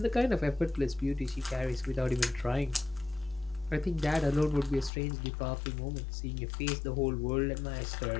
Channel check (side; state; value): right; drops out; at 4.9 s